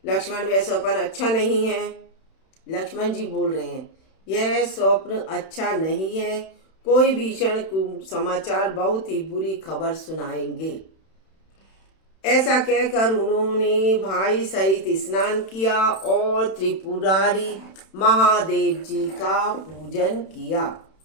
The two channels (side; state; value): right; late; 31 ms